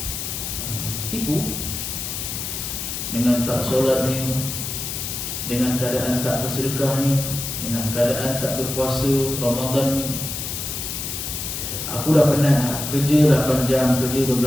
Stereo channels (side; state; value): left; noise; hiss, 5 dB below the sound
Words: Tipu dengan tak solatnya, dengan keadaan tak bersedekahnya, dengan keadaan tak berpuasa Ramadan ni. Aku dah penat kerja 8 jam, kerja 12